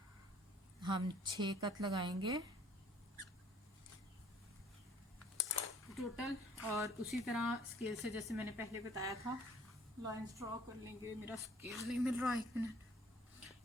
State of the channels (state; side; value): normal; both; correlation 0.56